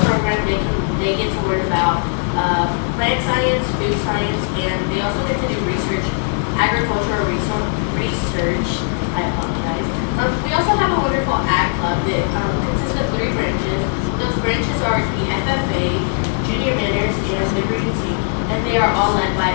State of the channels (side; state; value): right; silent; 58 dB below the other